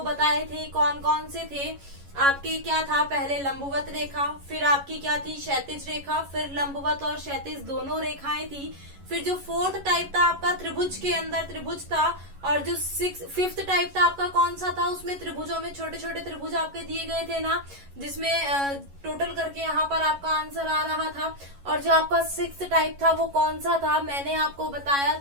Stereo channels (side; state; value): left; late; 11 ms